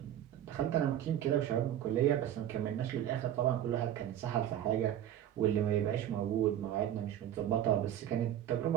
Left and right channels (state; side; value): quieter; left; 11.2 dB